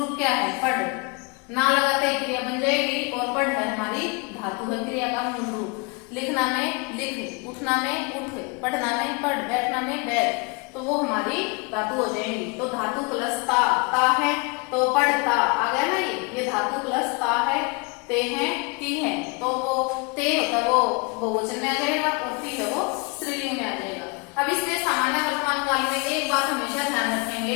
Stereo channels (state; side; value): quieter; right; 30.1 dB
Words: क्या है? पढ़। ना लगाते क्रिया बन जाएगी, और पढ़ है हमारी धातु है, क्रिया का मूल रूप। लिखना में लिख, उठना में उठ, पढ़ना में पढ़, बैठना में बैठ, तो वो हमारी धातु हो जाएंगी। तो धातु प्लस ता है तो पढ़ता आ गया ना। ये धातु प्लस ता है, ते है, ती है, तो वो ते होता है वो बहुवचन में आ जाएगा और ती है वो स्त्रीलिंग में आ जाएगा। अब इसमें सामान्य वर्तमान काल में एक बात हमेशा ध्यान